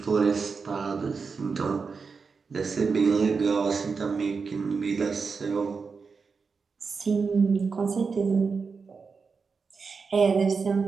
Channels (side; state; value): left; quieter; 5.1 dB